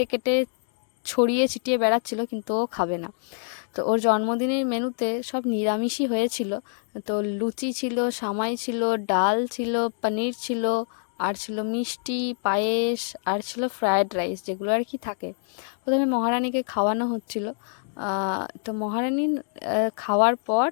কেটে ছড়িয়ে ছিটিয়ে বেড়াচ্ছিল, কিন্তু ও খাবে না। তো ওর জন্মদিনের মেনুতে সব নিরামিষই হয়েছিল। তো লুচি ছিল, সামাই ছিল, ডাল ছিল, পনির ছিল, আর ছিল মিষ্টি, পায়েস, আর ছিল ফ্রায়েড রাইস, যেগুলো আর কি থাকে। প্রথমে মহারানীকে খাওয়ানো হচ্ছিল। তো মহারানী খাওয়ার পর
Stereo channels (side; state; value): right; silent; digital silence